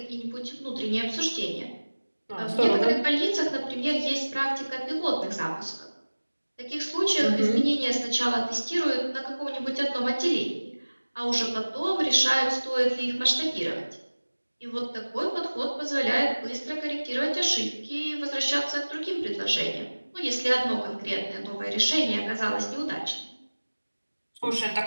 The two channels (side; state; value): both; inverted; correlation -1.00